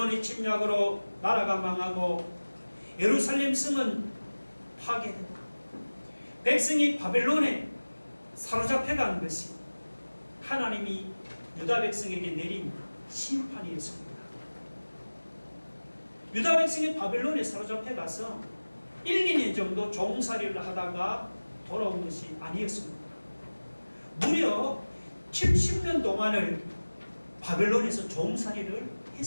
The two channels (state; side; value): inverted; both; correlation -1.00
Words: 침략으로 나라가 망하고 예루살렘 성은 파괴되고 백성이 바벨론에 사로잡혀간 것이 하나님이 유다 백성에게 내린 심판이었습니다. 유다 백성이 바벨론에 사로잡혀가서 1, 2년 정도 종살이를 하다가 돌아온 것이 아니었습니다. 무려 70년 동안을 바벨론에서 종살이를